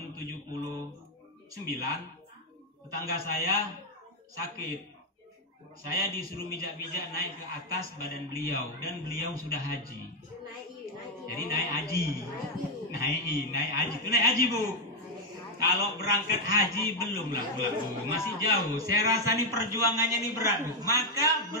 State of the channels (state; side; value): normal; both; correlation 0.02